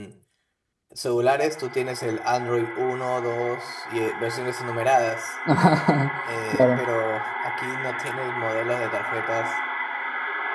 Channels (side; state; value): both; identical; correlation 1.00